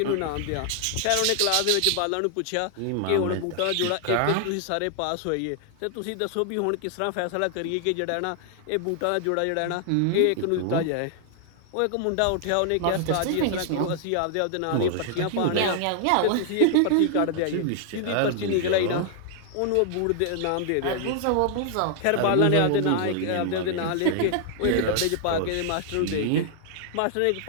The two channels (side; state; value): both; different; correlation 0.00